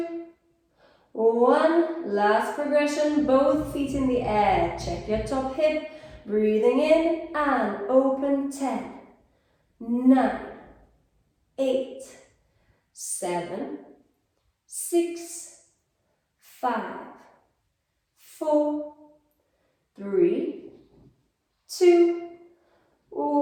1. Last progression, both feet in the air. Check your top hip, breathing in and open. 10, 9, 8, 7, 6, 5, 4, 3, 2,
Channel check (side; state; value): both; identical; correlation 1.00